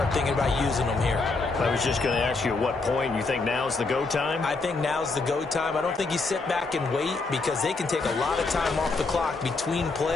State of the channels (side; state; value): right; quieter; 3.8 dB